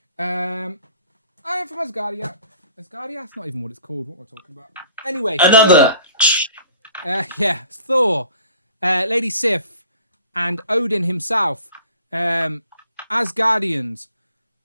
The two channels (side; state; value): both; inverted; correlation -0.50